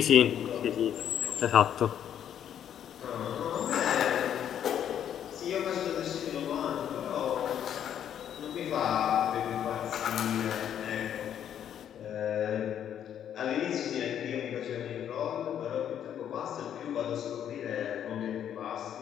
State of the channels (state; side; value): quieter; right; 9.6 dB